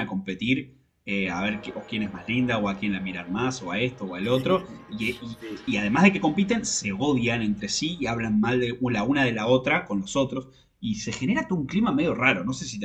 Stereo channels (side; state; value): both; identical; correlation 1.00